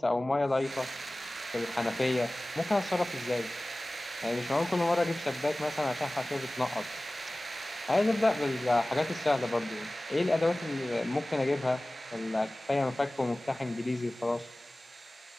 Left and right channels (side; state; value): both; normal; correlation 0.98